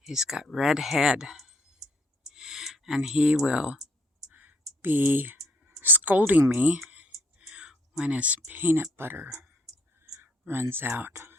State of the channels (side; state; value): both; normal; correlation 0.67